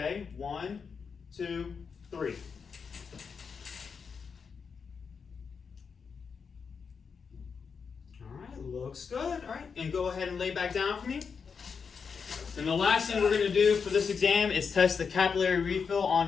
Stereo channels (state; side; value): quieter; right; 5.8 dB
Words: 1, 2, 3. Looks good. All right, and go ahead and lay back down for me. And the last thing we're going to do for this exam is test the capillary refill on